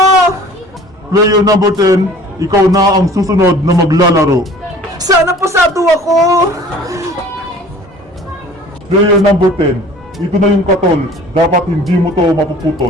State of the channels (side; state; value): both; normal; correlation 0.48